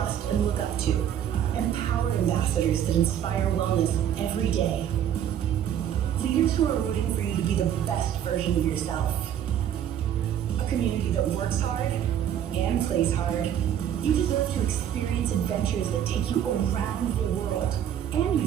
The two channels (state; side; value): quieter; left; 10.0 dB